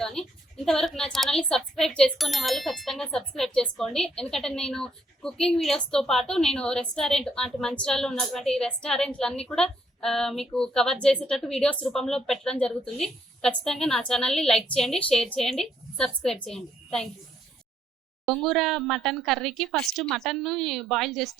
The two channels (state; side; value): normal; both; correlation 0.71